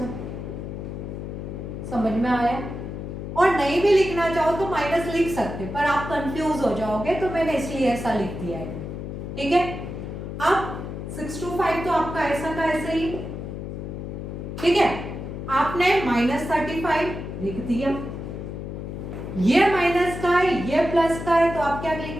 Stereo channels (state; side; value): noise; left; hum, 7 dB below the sound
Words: समझ में आया। और नहीं भी लिखना चाहो तो माइनस लिख सकते, पर आप कंफ्यूज हो जाओगे तो मैंने इसलिए ऐसा लिख दिया है। ठीक है, अब 625 तो आपका ऐसा का ऐसे ही, ठीक है, आपने -35 लिख दिया, ये माइनस का है ये प्लस का है तो आप क्या